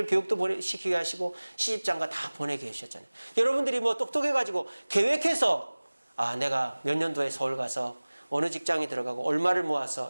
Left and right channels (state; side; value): inverted; both; correlation -1.00